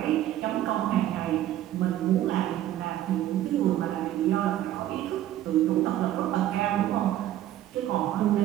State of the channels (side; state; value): left; quieter; 12.9 dB